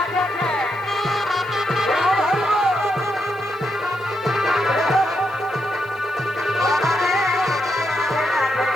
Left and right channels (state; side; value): noise; left; hiss, 29 dB below the sound